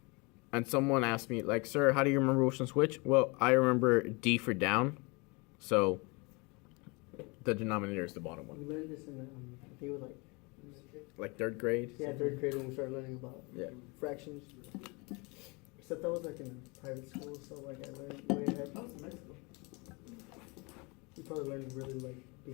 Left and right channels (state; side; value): quieter; right; 28.4 dB